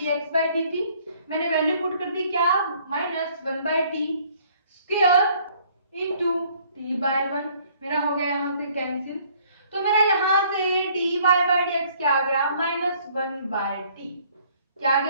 by dt। मैंने वैल्यू पुट कर दी क्या, minus 1 by t square into t by 1। मेरा हो गया यहाँ से कैंसिल। तो मेरा यहाँ से dy by dx क्या आ गया, माइनस 1 by t। क्या आ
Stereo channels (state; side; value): inverted; both; correlation -0.60